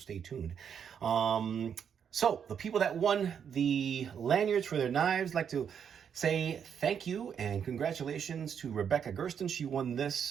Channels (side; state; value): left; quieter; 7.7 dB